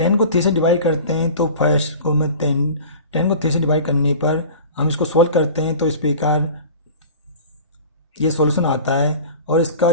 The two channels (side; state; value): both; inverted; correlation -0.38